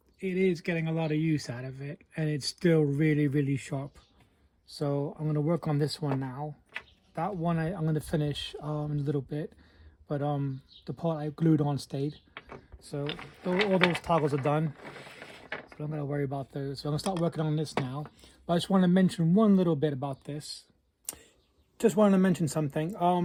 it is getting a lot of use out of it, and it's still really, really sharp. So I'm going to work on this one now. That one I'm going to finish in a little bit, but the part I glued on stayed. So all those toggles are done. So I'm going to worry about those. So I'm going to start working on this now. But I just want to mention one little bit about this. Just wanted to mention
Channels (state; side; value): identical; both; correlation 1.00